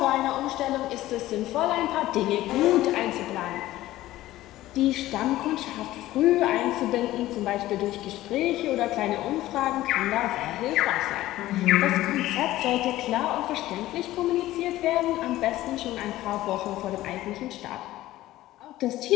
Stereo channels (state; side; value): quieter; right; 15.6 dB